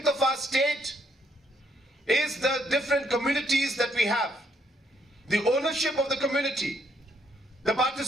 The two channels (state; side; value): normal; both; correlation 0.71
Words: of our state is the different communities that we have, the ownership of the community, the